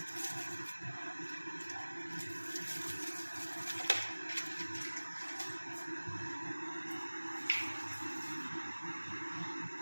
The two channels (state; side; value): inverted; both; correlation -1.00